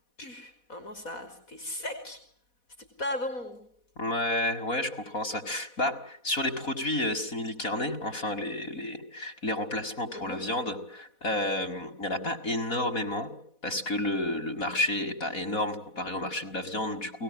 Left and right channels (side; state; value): right; late; 4.1 ms